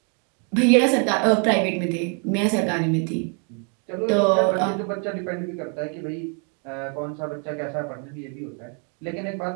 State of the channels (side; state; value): left; quieter; 39.6 dB